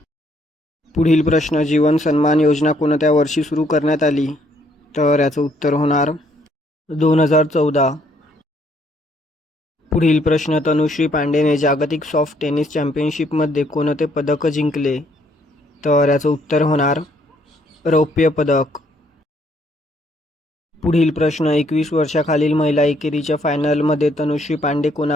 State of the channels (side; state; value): both; normal; correlation 0.68